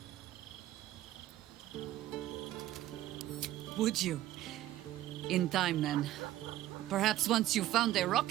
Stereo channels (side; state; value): left; quieter; 14.2 dB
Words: Would you? In time, then. Perhaps once you found a